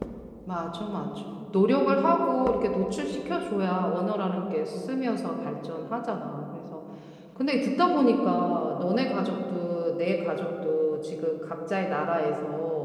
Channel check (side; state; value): both; identical; correlation 1.00